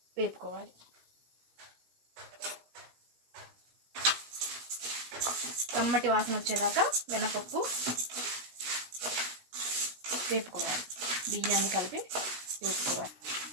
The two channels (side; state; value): left; late; 16 ms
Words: వేపుకోవాలి. కమ్మటి వాసన వచ్చేదాకా మినపప్పు వేపుకోవాలి. బియ్యాన్ని కలిపి వేపుకోవాలి.